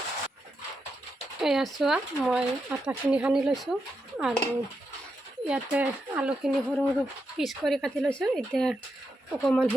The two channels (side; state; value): both; normal; correlation 0.85